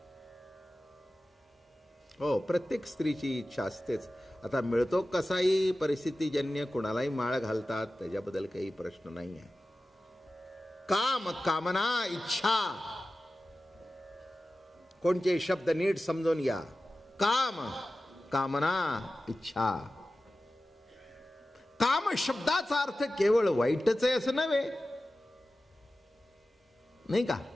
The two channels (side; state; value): both; normal; correlation 0.95